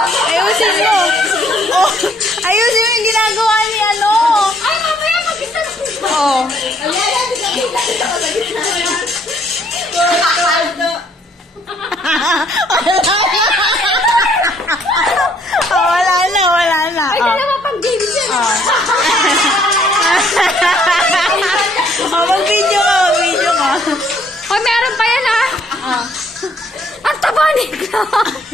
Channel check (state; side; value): normal; both; correlation 0.65